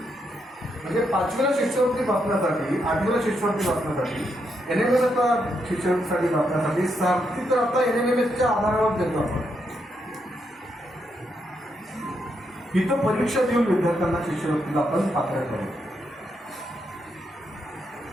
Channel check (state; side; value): normal; both; correlation 0.80